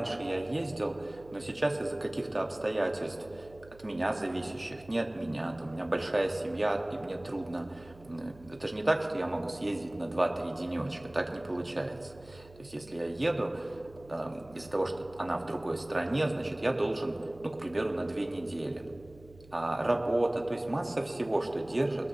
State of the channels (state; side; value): noise; right; hum, 22 dB below the sound